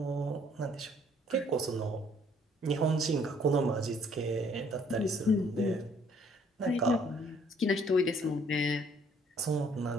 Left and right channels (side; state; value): both; normal; correlation 0.62